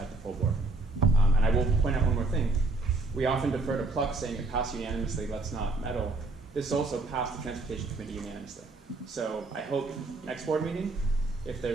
the full board. And I will point out one more thing. We often defer to Pluck saying it passed unanimously, let's not meddle. This also passed the Transportation Committee unanimously. So I hope next board meeting, if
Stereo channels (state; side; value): quieter; left; 3.2 dB